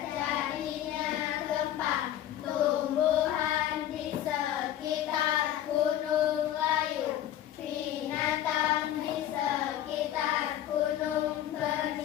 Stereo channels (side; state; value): right; quieter; 11.8 dB